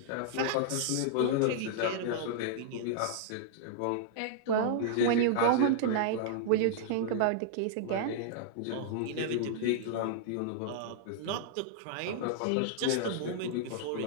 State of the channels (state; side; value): different; both; correlation -0.01